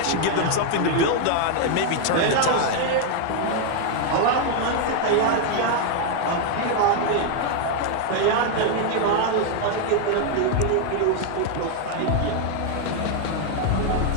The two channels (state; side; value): different; both; correlation 0.00